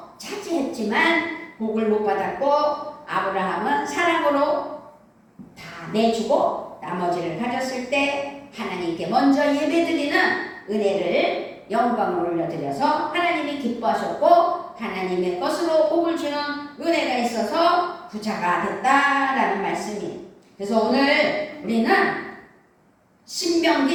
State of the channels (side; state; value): both; identical; correlation 1.00